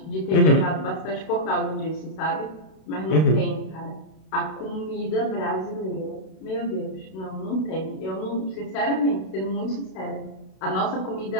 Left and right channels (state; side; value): late; right; 32 ms